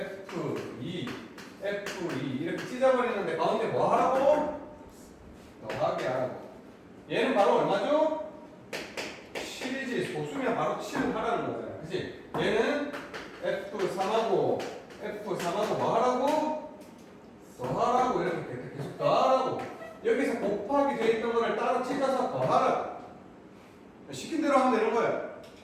F2 이렇게 찢어버리는데 가운데 뭐 하라고? 더하기 하라고. 얘는 바로 얼마죠? 7이지. 소수면 바로 7을 하라는 거잖아. 그치? 얘는 F3하고 F3하고 뭐 하라고? 더하라고. 이렇게 계속 더하라고. 여기서 곱하기 돼 있던 거를 따로 찢어서 더하라고. 시킨 대로 하면 되는 거야.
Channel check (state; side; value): identical; both; correlation 1.00